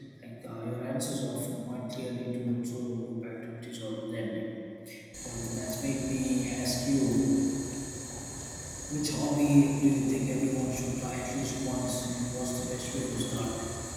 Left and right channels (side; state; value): both; identical; correlation 1.00